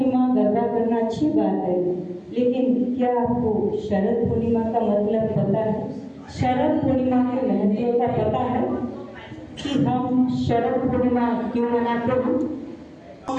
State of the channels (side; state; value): both; identical; correlation 1.00